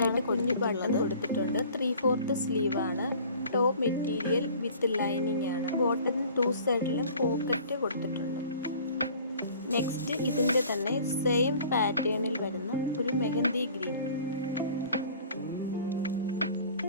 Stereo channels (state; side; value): inverted; both; correlation -0.48